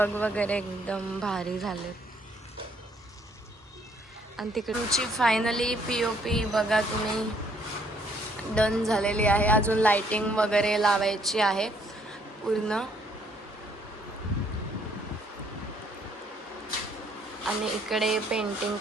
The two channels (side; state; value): both; normal; correlation 0.66